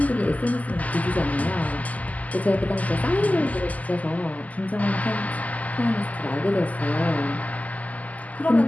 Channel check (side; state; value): right; late; 0.075 ms